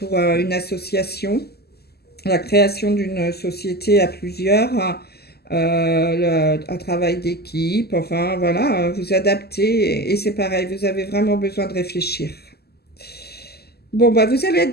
une association, la création d'une société à plusieurs, un travail d'équipe, enfin voilà, vous adaptez et c'est pareil, vous avez vraiment besoin de réfléchir. Bon, bah, vous allez être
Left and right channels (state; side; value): late; right; 0.46 ms